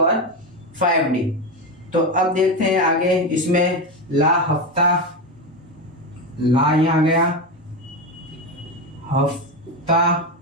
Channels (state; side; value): normal; both; correlation 0.15